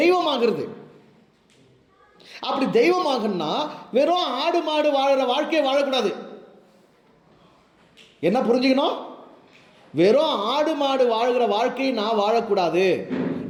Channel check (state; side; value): identical; both; correlation 1.00